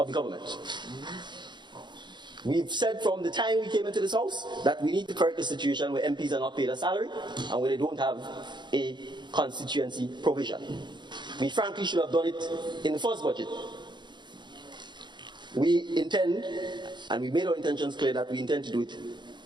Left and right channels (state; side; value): late; left; 0.22 ms